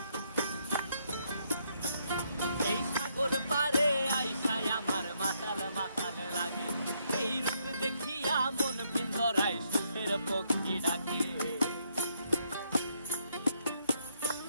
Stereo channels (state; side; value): inverted; both; correlation -0.73